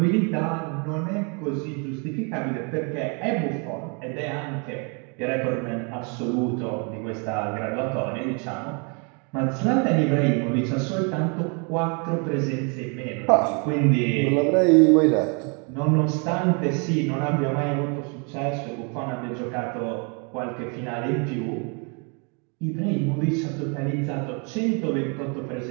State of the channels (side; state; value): left; quieter; 35.5 dB